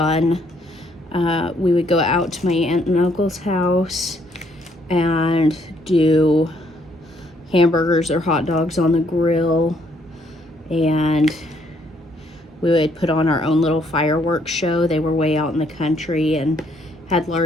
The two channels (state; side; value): normal; both; correlation 0.69